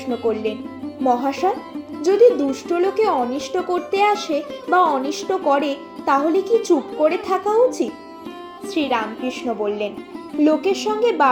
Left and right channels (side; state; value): both; identical; correlation 1.00